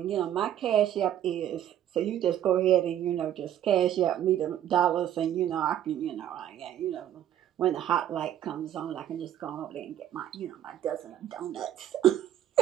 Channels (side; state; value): left; quieter; 11.1 dB